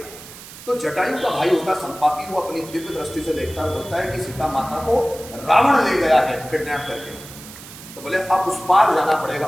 तो जटायु का भाई होता संपाति, वो अपनी दिव्य दृष्टि से देखता है, बोलता है कि सीता माता को रावण ले गया है किडनैप करके। तो बोले अब उस पार जाना पड़ेगा,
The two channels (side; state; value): right; noise; hiss, 16 dB below the sound